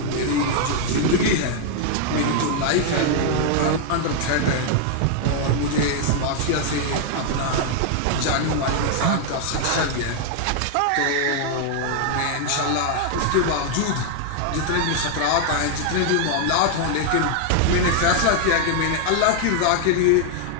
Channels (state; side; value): different; both; correlation 0.00